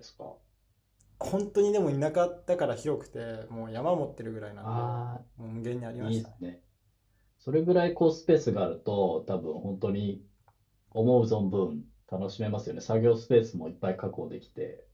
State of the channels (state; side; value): identical; both; correlation 1.00